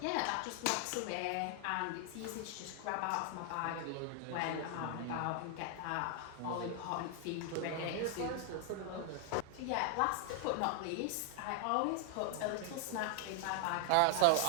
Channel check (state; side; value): different; both; correlation 0.00